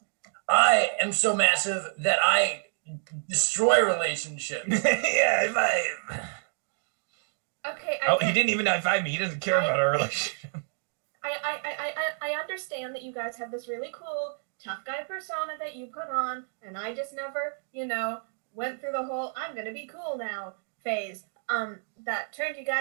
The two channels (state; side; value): silent; left; digital silence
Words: I am so massive that I destroy relationships. Yeah, Okay. he didn't even high-five me. He doesn't care about our relationship. I understand that you guys have this really cool tough guy persona that you put on, and I just never, went through the whole I'm gonna be cool now phase. That turned you